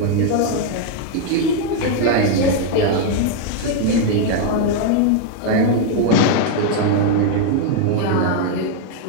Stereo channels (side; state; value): both; different; correlation 0.01